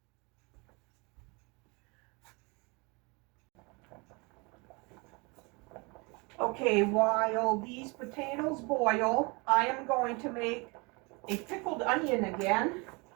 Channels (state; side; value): quieter; left; 28.7 dB